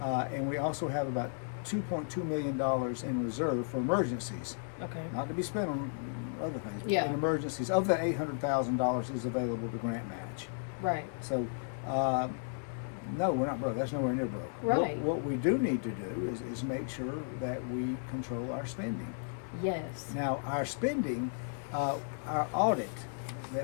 and we also have about $2.2 million in reserve for emergencies, Okay. not to be spent on other things. But Yeah. in emergencies, of that $800,000 is available to grant match. Right. So, no, we're not broke. That's nowhere near broke. Right. What we do need to do is make sure that we control our spending. Yes. Now, our spending, our audit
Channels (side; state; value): right; silent; 55 dB below the other